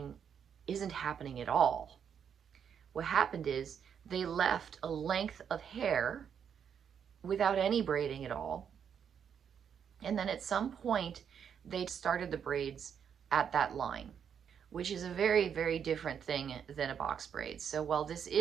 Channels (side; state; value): left; quieter; 7.8 dB